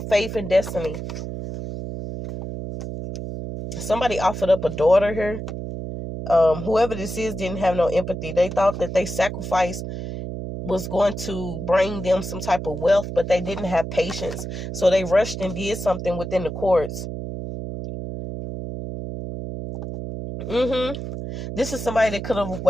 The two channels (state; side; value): noise; right; hum, 6 dB below the sound